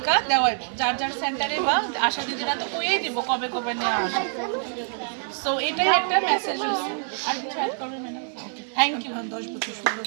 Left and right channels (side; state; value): left; silent; 61 dB below the other